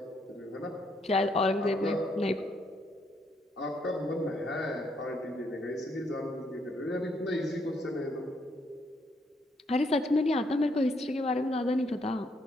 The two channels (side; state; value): both; normal; correlation 0.73